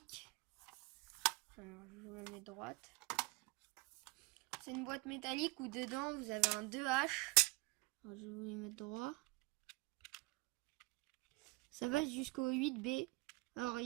Alors je vous la mets droite. C'est une boîte métallique où dedans vous avez un 2H. Alors je vais vous les mettre droit. Ça va jusqu'au 8B. Alors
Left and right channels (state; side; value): quieter; left; 25.8 dB